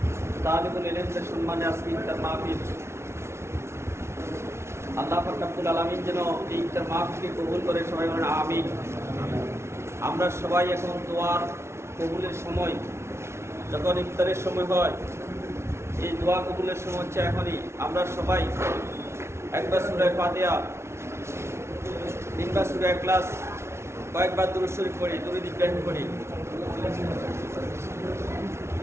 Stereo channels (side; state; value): left; late; 0.13 ms